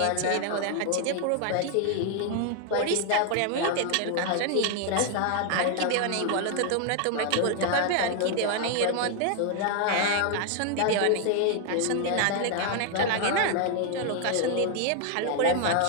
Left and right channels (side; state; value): both; different; correlation 0.00